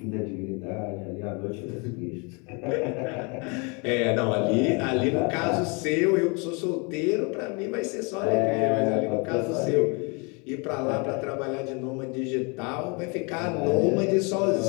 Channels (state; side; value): quieter; right; 31.8 dB